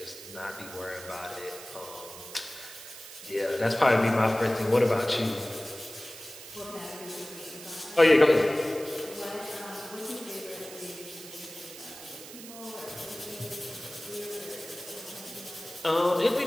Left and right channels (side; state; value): right; noise; hiss, 14 dB below the sound